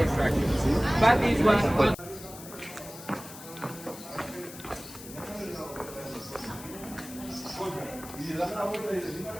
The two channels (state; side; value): noise; left; hiss, 15 dB below the sound